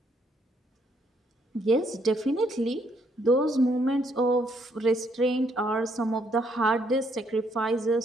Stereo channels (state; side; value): normal; both; correlation 0.71